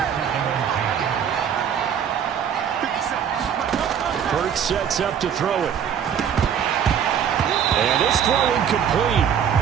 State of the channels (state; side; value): quieter; left; 8.4 dB